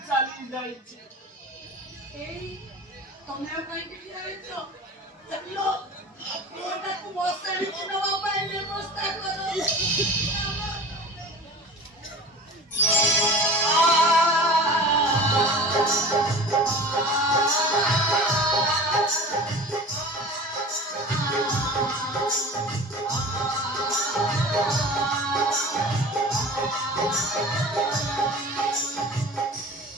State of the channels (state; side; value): normal; both; correlation 0.37